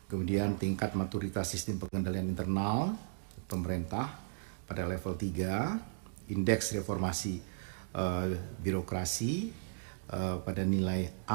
Kemudian tingkat maturitas sistem pengendalian internal pemerintah pada level 3, indeks reformasi birokrasi pada nilai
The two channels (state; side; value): silent; left; digital silence